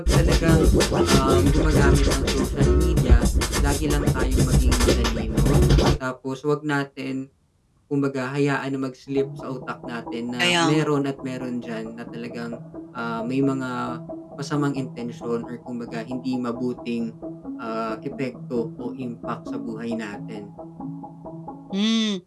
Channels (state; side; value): identical; both; correlation 1.00